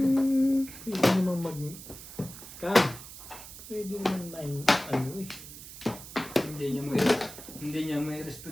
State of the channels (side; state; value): right; noise; hiss, 14 dB below the sound